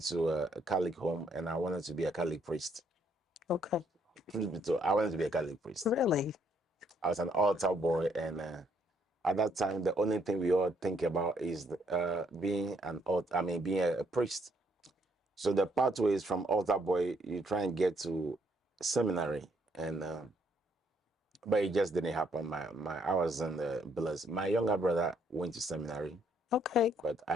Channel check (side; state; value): both; normal; correlation 0.70